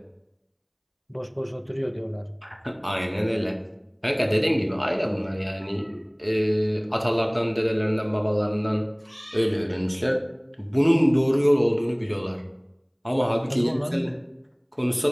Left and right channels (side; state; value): both; identical; correlation 1.00